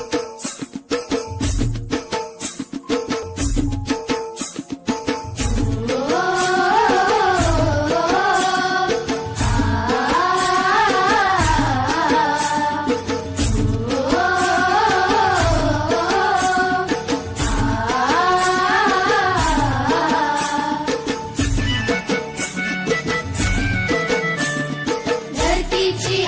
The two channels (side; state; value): both; identical; correlation 1.00